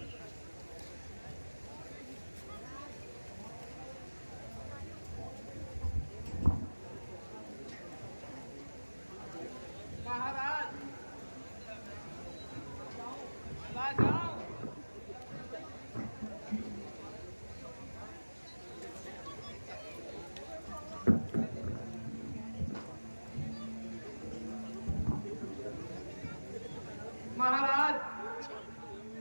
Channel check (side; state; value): both; inverted; correlation -1.00